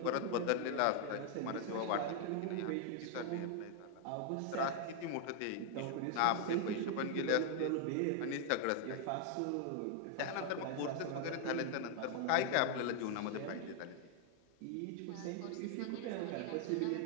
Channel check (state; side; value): different; both; correlation 0.00